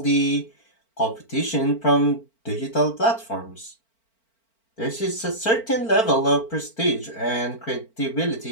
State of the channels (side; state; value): right; late; 4.4 ms